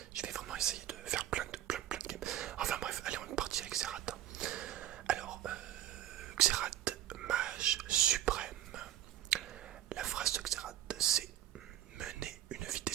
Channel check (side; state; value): left; quieter; 12.5 dB